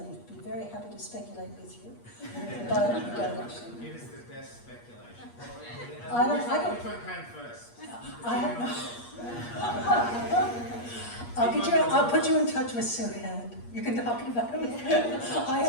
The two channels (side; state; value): right; late; 8.4 ms